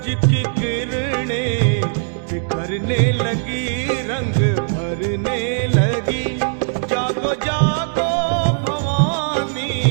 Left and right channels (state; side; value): silent; left; digital silence